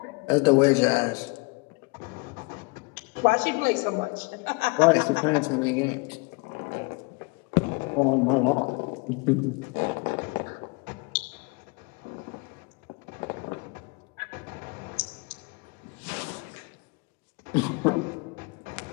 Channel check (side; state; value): right; quieter; 28.8 dB